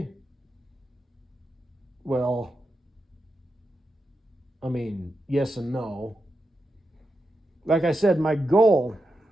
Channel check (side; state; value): both; normal; correlation 0.87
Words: Well, I mean, yes and no. Like I said, my goal